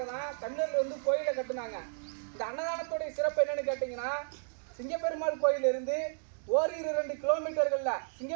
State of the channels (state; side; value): silent; left; digital silence